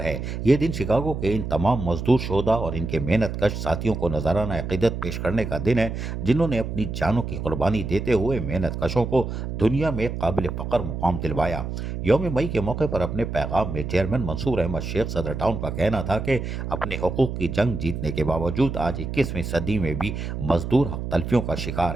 है। ये दिन शिकागो के इन तमाम मजदूर शोधा और इनके मेहनत कश साथियों को नजराना अक़ीदत पेश करने का दिन है जिन्होंने अपनी जानों की कुर्बानी देते हुए मेहनत कशों को दुनिया में काबिल फ़ख्र मुकाम दिलवाया। यौम मई के मौके पर अपने पैगाम में चेयरमैन मंसूर अहमद शेख सदर टाउन का कहना था कि अपने हकूक़ की जंग जीतने के बावजूद आज 21वीं सदी में भी मजदूर हक तलफियों का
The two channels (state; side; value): noise; right; hum, 5 dB below the sound